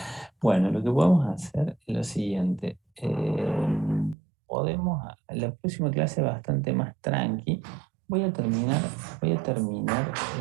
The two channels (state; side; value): drops out; left; at 4.2 s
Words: Bueno, lo que podemos hacer es lo siguiente. La próxima clase bastante más tranqui. Voy a terminar